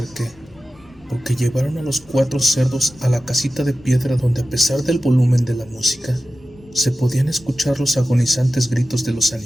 porque llevaron a los 4 cerdos a la casita de piedra donde, a pesar del volumen de la música, se podían escuchar los agonizantes gritos de los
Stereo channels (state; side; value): normal; both; correlation 0.94